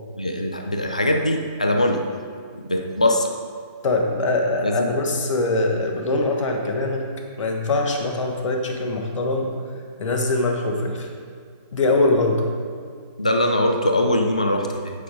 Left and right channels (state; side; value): inverted; both; correlation -0.54